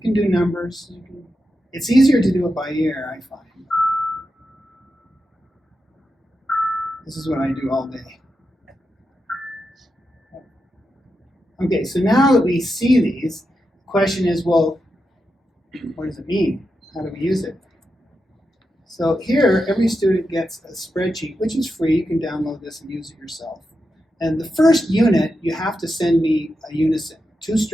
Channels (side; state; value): both; normal; correlation 0.88